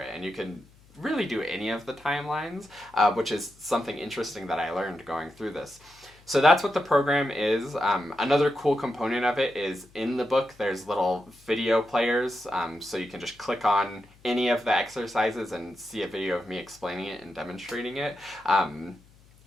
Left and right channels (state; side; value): noise; left; hum, 27 dB below the sound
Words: And you can really do any of the timelines, which is something interesting that I learned going through this. So that's what the program is. Another cool component of it is in the book there's little video players, so you can just click on any of the exercises and see a video of me explaining it and demonstrating it.